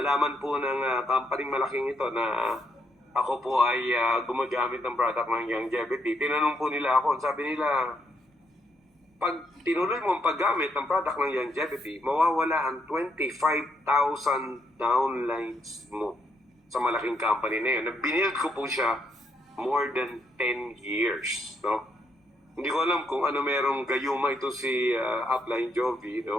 po ng company malaking ito na ako po ay gumagamit ng product ng longevity. Tinanong po nila ako, sabi nila, pag tinuloy mo ang paggamit ng product ng longevity, mawawala ang 25,000 downlines mo sa malaking company na yun. Binild ko po siya more than 10 years. No? Hindi ko alam kung ano merong gayuma ito si Upline Jovi.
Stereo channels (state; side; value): normal; both; correlation 0.75